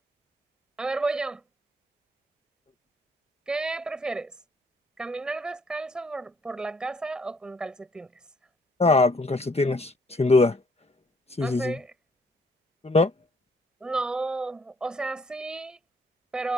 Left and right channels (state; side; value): normal; both; correlation 0.65